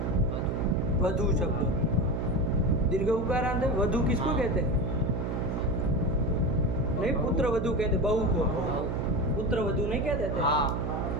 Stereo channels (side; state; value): right; noise; hum, 1 dB below the sound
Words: वधू शब्द दीर्घ उकारांत है। वधू किसको कहते हैं? नहीं, पुत्र वधू कहते, बहू को पुत्र वधू नहीं कह देते? हाँ।